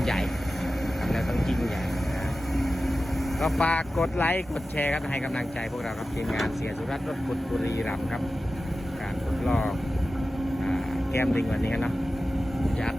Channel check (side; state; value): both; normal; correlation 0.94